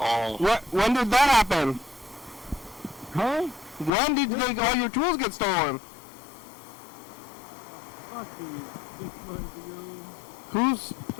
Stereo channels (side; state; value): right; drops out; at 3.9 s